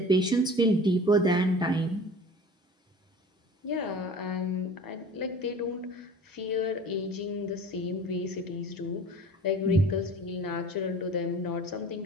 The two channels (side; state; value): both; normal; correlation 0.42